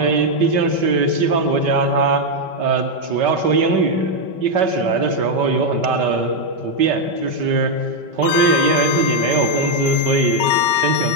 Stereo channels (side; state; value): left; late; 5.2 ms